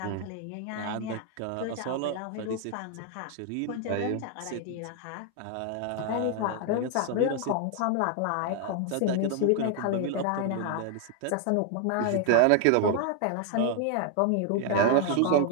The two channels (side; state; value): both; different; correlation 0.00